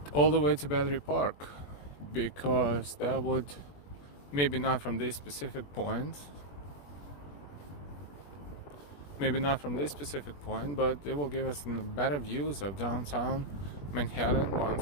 all the way to Battery Park, because that would, maybe not from this specific point, but it will give us better views of downtown Manhattan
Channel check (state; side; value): late; right; 21 ms